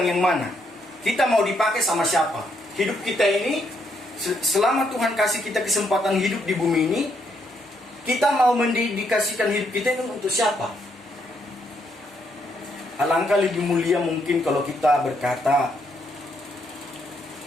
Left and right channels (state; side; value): normal; both; correlation 0.75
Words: yang mana? Kita mau dipakai sama siapa? Hidup kita ini, selama Tuhan kasih kita kesempatan hidup di bumi ini, kita mau mendedikasikan hidup kita ini untuk siapa? Alangkah lebih mulia mungkin kalau kita berkata,